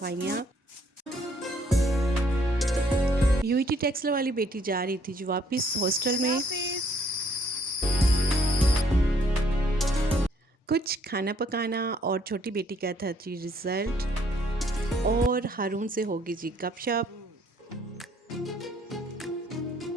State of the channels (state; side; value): normal; both; correlation 0.64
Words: यूईटी टेक्सला वाली बेटी जा रही थी जो वापस हॉस्टल में। कुछ खाना पकाना और छोटी बेटी का था जी रिज़ल्ट, और हारून से होगी जी गपशप।